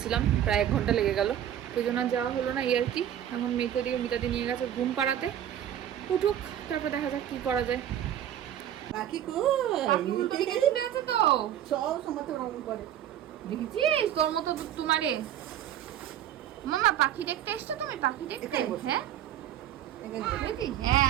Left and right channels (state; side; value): quieter; left; 10.8 dB